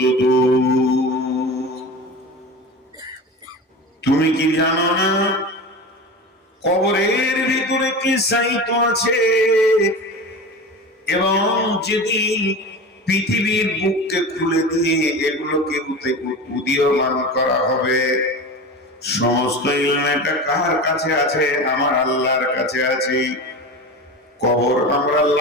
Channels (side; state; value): both; normal; correlation 0.30